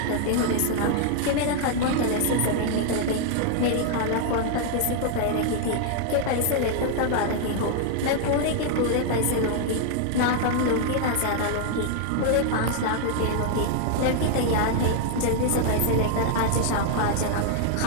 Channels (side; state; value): both; different; correlation 0.00